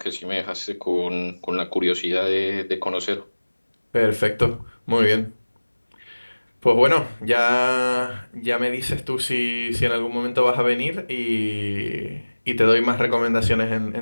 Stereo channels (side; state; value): both; inverted; correlation -1.00